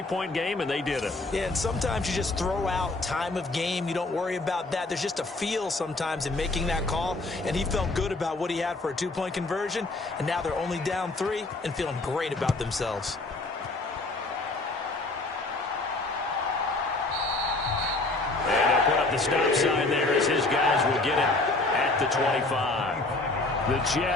game, and they did it. Yeah, and sometimes you just throw out time of game. You don't worry about that. There's just a feel sometimes in making that call, and he felt good about what he had for a two-point conversion, and now they're only down 3 and feeling great about themselves. And he'll put up the stop sign there as his guys will get it at the 25. The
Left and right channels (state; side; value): quieter; right; 3.1 dB